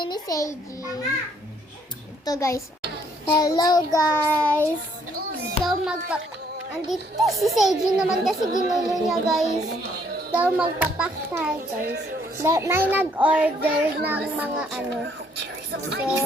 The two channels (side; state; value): both; normal; correlation 0.66